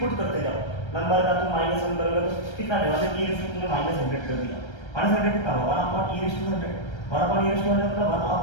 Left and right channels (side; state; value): right; late; 1.3 ms